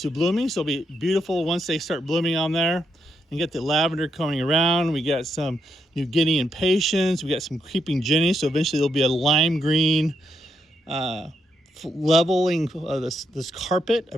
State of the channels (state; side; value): normal; both; correlation 0.79